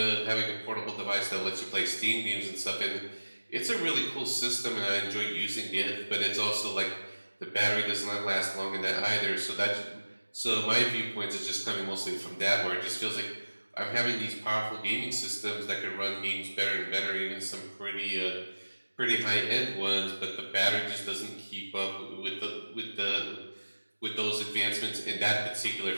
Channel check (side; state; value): both; inverted; correlation -1.00